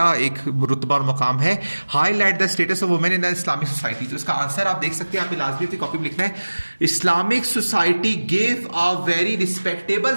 एक रुतबा और मकाम है। Highlight the status of women in the Islamic society. तो इसका आंसर आप देख सकते हैं, आपने लाजमी अपनी कॉपी में लिखना है, Islamic society give a very respectable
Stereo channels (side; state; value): both; inverted; correlation -1.00